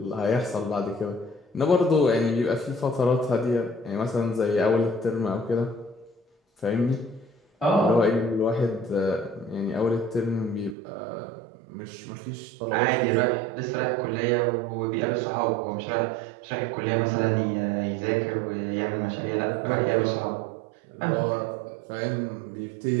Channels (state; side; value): drops out; left; at 10.8 s